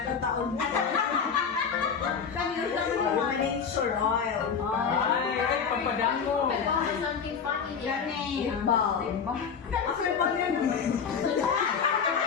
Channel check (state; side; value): quieter; right; 6.4 dB